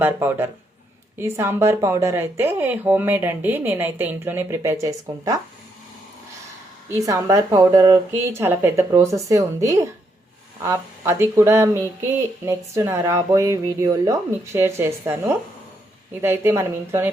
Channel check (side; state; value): both; normal; correlation 0.77